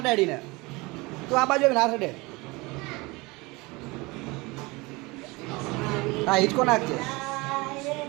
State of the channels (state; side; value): quieter; left; 24.3 dB